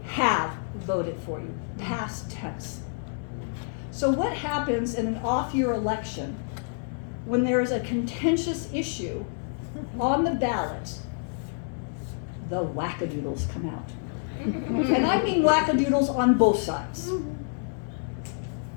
have voted for you, past tense. So what happens in an off-year election when there is a contentious issue on the ballot? The wackadoodles come out. And I mean wackadoodles on both sides.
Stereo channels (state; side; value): silent; right; digital silence